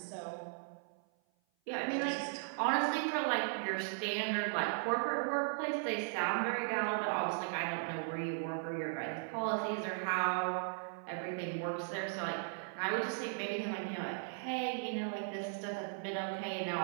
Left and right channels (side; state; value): left; silent; 53 dB below the other